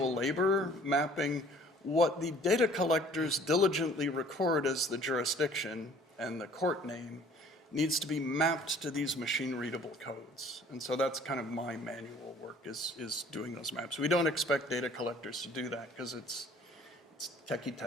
labor mapping what the data collectors diligently record as the jurisdiction and the court name needs to be mapped to these machine-readable codes. And so that's kind of my manual work is doing those maps. We don't expect data collectors to do that because it's techie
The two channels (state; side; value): normal; both; correlation 0.53